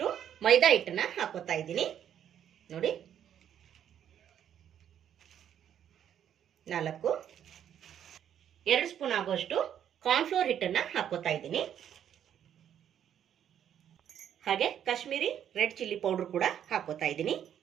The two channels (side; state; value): left; quieter; 9.7 dB